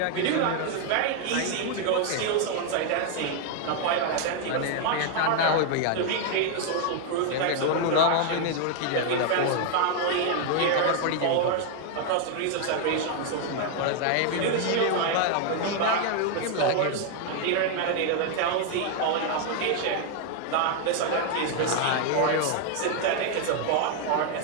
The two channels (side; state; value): both; different; correlation 0.00